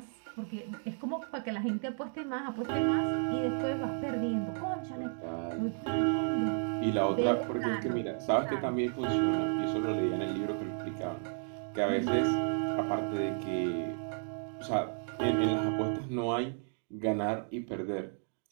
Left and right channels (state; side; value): silent; left; 56 dB below the other